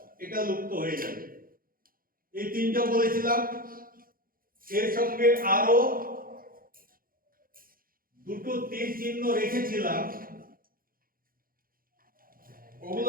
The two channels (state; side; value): late; left; 0.42 ms